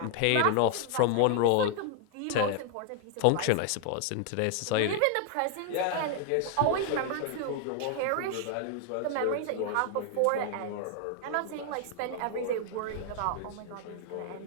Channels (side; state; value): both; different; correlation 0.00